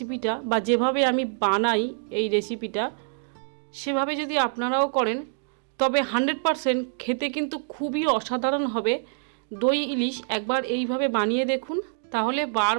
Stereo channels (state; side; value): silent; left; digital silence